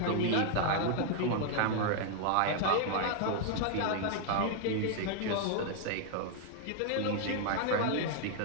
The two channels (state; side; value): different; both; correlation 0.00